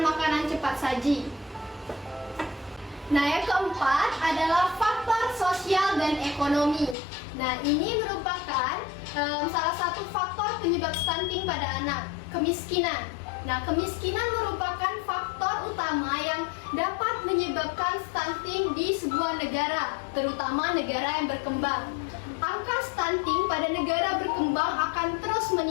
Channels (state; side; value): drops out; right; at 7.0 s